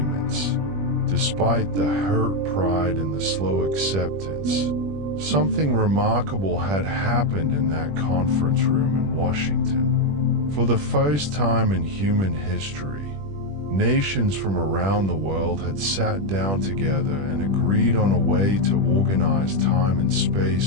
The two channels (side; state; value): left; late; 21 ms